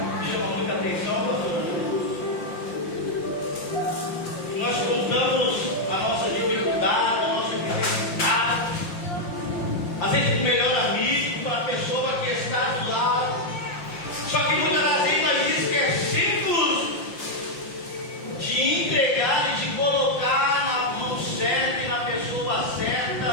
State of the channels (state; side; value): late; right; 5.7 ms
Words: chama muita atenção, pastor? Nós contamos a nossa dificuldade, a nossa necessidade, às vezes o melhor amigo, para a pessoa que está do lado. Só que muitas das vezes nós esquecemos de entregar e de colocar na mão certa e na pessoa